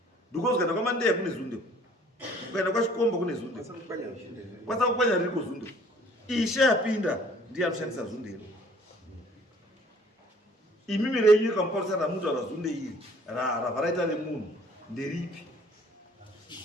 because kana kwamandeya kune zunde ukaenda kwachikomba kune zunde kwasa kukwanya ririko zunde ishe apinda ndiye anoshandisa zunde iro imimi renyu kamuparisana mutaura zunde iri ravaraita nemunhu nderipi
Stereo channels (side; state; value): both; normal; correlation 0.56